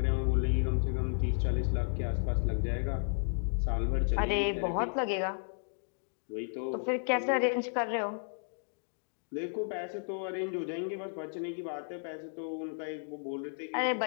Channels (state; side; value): silent; right; digital silence